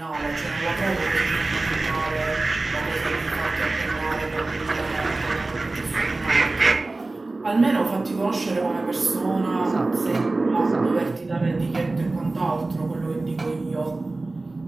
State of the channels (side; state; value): left; quieter; 3.2 dB